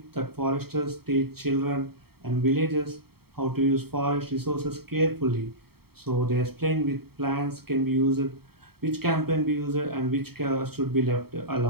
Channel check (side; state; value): left; late; 0.95 ms